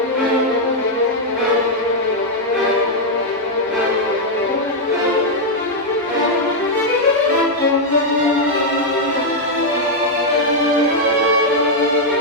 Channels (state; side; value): normal; both; correlation -0.02